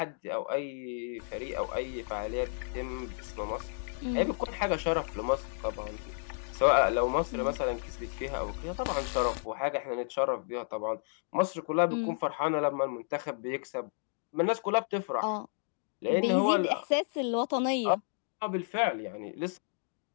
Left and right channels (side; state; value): right; silent; digital silence